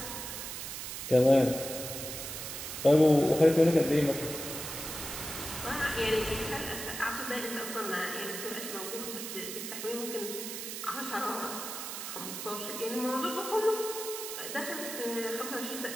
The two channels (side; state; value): right; noise; hiss, 7 dB below the sound